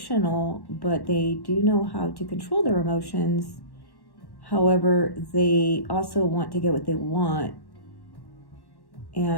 but they do know how to control their emotions. However, they also want to get what they want,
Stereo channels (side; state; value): right; late; 1.1 ms